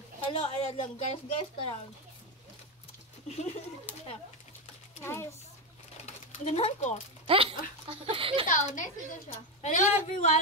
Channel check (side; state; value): both; normal; correlation 0.10